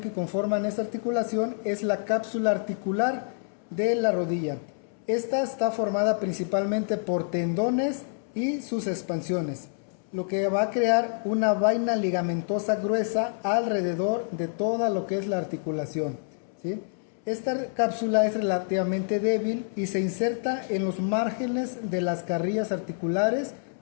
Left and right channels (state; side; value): silent; right; 60 dB below the other